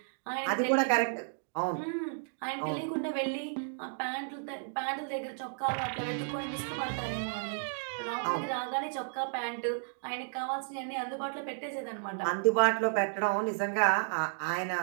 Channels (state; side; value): silent; left; digital silence